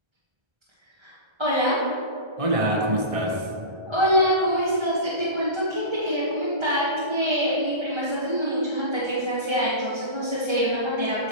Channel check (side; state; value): left; late; 1.3 ms